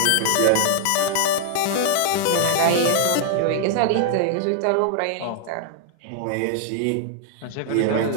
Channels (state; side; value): different; both; correlation -0.01